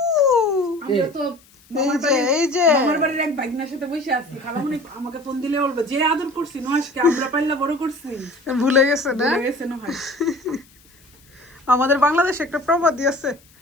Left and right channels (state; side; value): noise; left; hiss, 29 dB below the sound